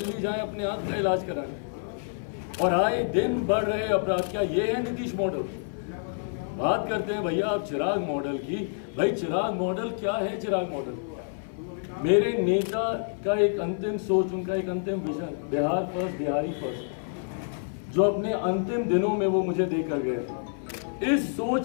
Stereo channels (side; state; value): right; silent; 58 dB below the other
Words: जाएं अपने आंख का इलाज कराने, और आए दिन बढ़ रहे अपराध। क्या ये है नीतीश मॉडल? बात करते हैं भैया आप चिराग मॉडल की। भाई चिराग मॉडल क्या है? चिराग मॉडल मेरे नेता का एक अंतिम सोच, उनका एक अंतिम vision, Bihar first, Bihari first, जो अपने अंतिम दिनों में वो मुझे देकर गए थे। इस